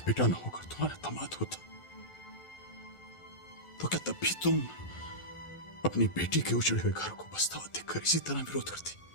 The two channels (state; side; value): late; right; 1.4 ms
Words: बेटा ना होकर तुम्हारा दामाद होता, तो क्या तब भी तुम अपनी बेटी के उजड़े हुए घर को बसता हुआ देखकर इसी तरह विरोध करती?